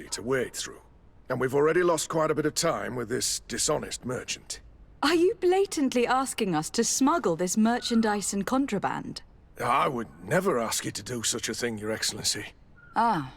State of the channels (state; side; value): identical; both; correlation 1.00